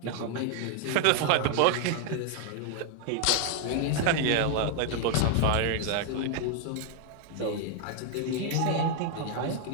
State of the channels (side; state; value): both; different; correlation 0.00